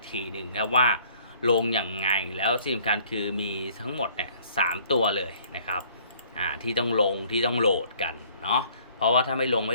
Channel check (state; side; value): inverted; both; correlation -0.57